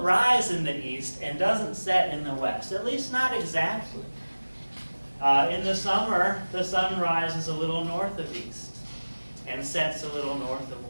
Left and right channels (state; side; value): inverted; both; correlation -1.00